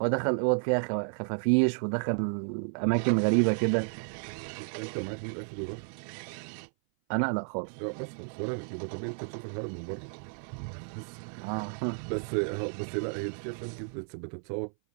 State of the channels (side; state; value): left; silent; 57 dB below the other